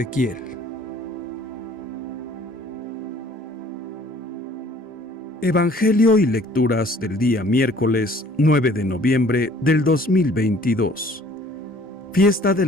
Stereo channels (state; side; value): normal; both; correlation 0.55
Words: Evangelio y lecturas del día miércoles 9 de noviembre del 2022. Fiesta de